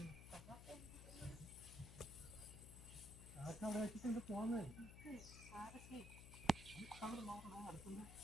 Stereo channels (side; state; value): left; noise; hum, 11 dB below the sound